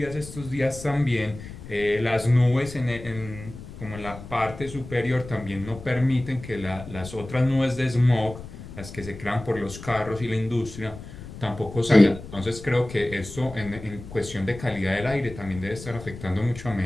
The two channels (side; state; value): left; noise; rumble, 13 dB below the sound